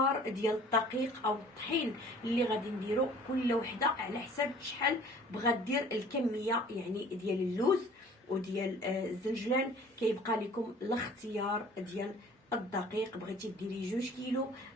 ديال الدقيق او الطحين اللي غادي نديرو كل وحده على حسب شحال بغات دير الكميه يعني ديال اللوز وديال الزنجلان. كيبقى لكم الاختيار ديال الدقيق، بغيتي ديري 2 كيلو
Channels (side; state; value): both; normal; correlation 0.50